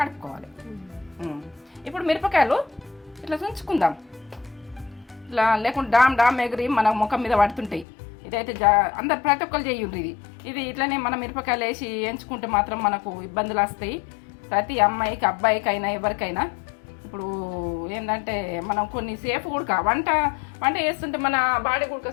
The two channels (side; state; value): right; drops out; at 7.9 s